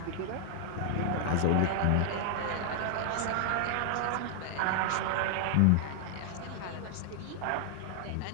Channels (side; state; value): both; different; correlation 0.00